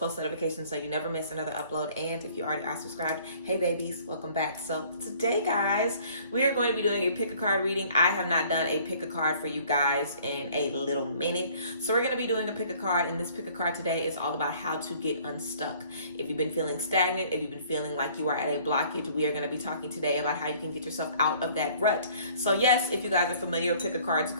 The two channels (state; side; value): inverted; both; correlation -0.55